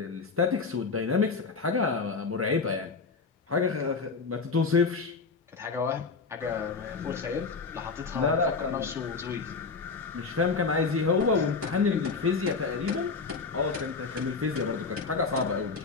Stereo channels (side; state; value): right; quieter; 4.6 dB